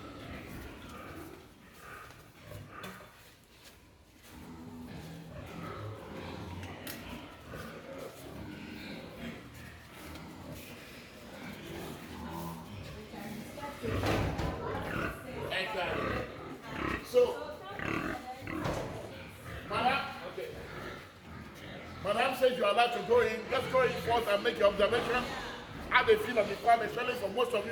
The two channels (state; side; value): identical; both; correlation 1.00